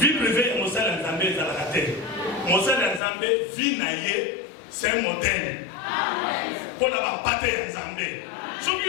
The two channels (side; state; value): right; drops out; at 3.0 s